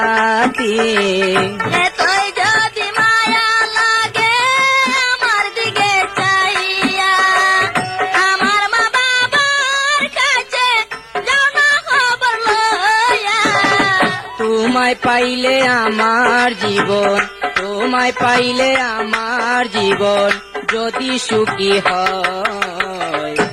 এতই যদি মায়া লাগে আমার দিকে চাহিয়া, আমার মা বাবার কাছে যাও না খবর লইয়া। তোমায় পাইলে আমার জীবন, তোমায় পাইলে আমার জীবন যদি সুখী হয়,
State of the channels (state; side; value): identical; both; correlation 1.00